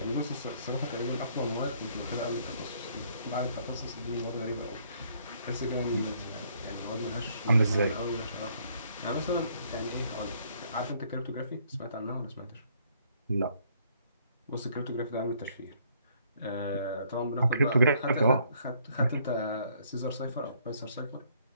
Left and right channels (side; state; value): both; inverted; correlation -0.65